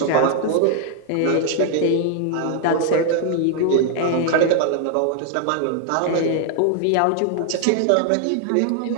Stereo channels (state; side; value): different; both; correlation 0.00